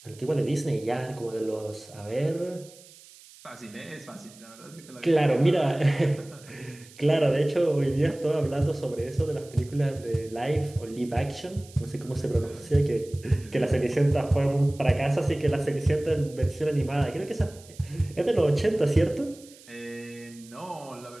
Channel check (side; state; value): right; noise; hiss, 22 dB below the sound